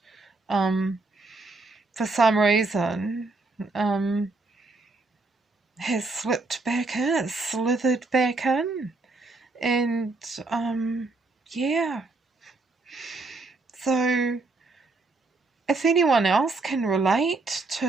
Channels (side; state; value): left; quieter; 3.4 dB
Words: for some reason has slipped back in, slithered back in. And yeah. So if anyone else can relate